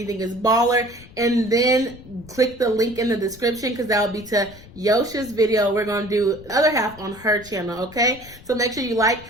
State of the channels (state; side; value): noise; left; rumble, 20 dB below the sound